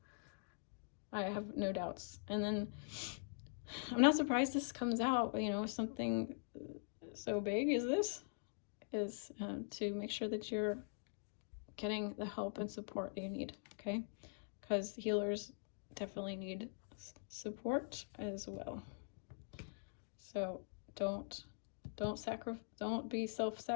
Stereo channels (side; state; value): right; silent; digital silence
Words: I have no doubts. And then I'm not surprised this comes out, something so big as this is to make sure that you're getting the help and support that you need, okay? Because healers definitely need support as well. So don't be